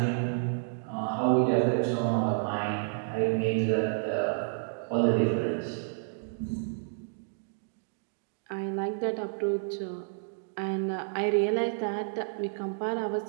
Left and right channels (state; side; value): silent; left; digital silence